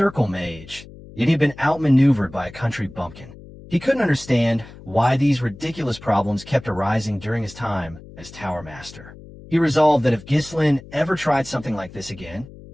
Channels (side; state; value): left; noise; hum, 18 dB below the sound